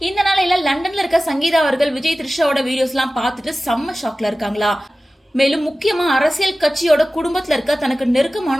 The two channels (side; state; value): both; normal; correlation 0.96